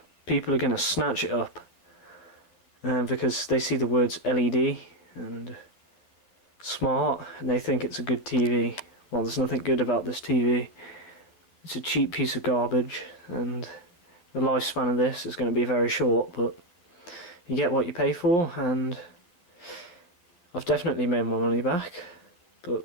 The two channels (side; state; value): right; late; 11 ms